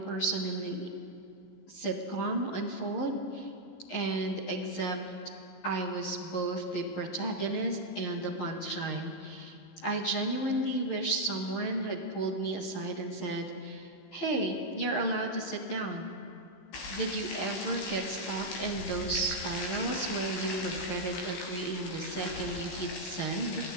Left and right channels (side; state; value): right; late; 15 ms